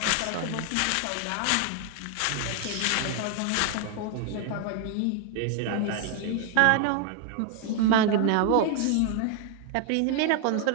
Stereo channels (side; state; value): both; different; correlation 0.00